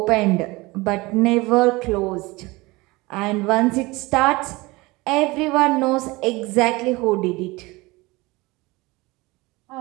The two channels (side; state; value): left; quieter; 22.5 dB